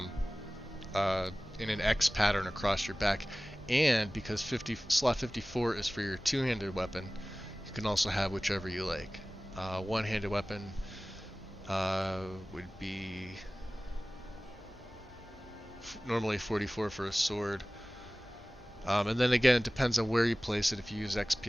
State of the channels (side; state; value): both; normal; correlation 0.98